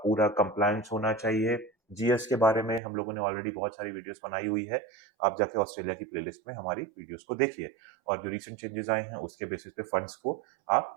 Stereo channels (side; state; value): left; drops out; at 2.8 s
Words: कंप्लायंस होना चाहिए। जीएस के बारे में हम लोगों ने ऑलरेडी बहुत सारी वीडियोस बनाई हुई है, आप जाके ऑस्ट्रेलिया की प्लेलिस्ट में हमारी वीडियोस को देखिए और जो रिसेंट चेंजेस आए हैं उसके बेसिस पे फंड्स को